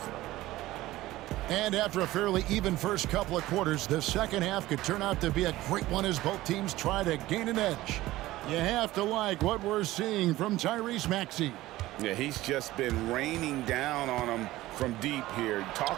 And after a fairly even first couple of quarters, the second half could turn out to be a great one as both teams try to gain an edge. You have to like what we're seeing from Tyrese Maxey. Yeah, he's just been raining down on him from deep here.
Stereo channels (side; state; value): left; quieter; 16.8 dB